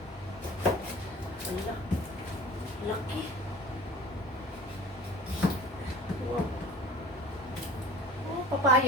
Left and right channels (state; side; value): normal; both; correlation 0.42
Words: Wala. Laki. Wow. Oh,